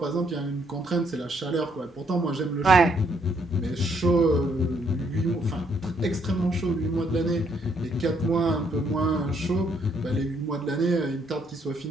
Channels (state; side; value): normal; both; correlation 0.70